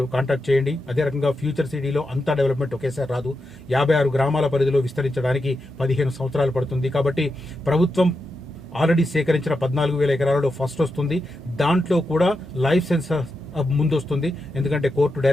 కాంటాక్ట్ చేయండి. అదే రకంగా ఫ్యూచర్ సిటీలో అంతా డెవలప్మెంట్ ఒకేసారి రాదు. 56 గ్రామాల పరిధిలో విస్తరించడానికి 15 సంవత్సరాలు పడుతుంది. కాబట్టి ప్రభుత్వం ఆల్రెడీ సేకరించిన 14,000 ఎకరాలలో ఫస్ట్ వస్తుంది. దాంట్లో కూడా లైఫ్ సెన్సస్ ముందు వస్తుంది. ఎందుకంటే కోర్టు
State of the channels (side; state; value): both; normal; correlation 0.87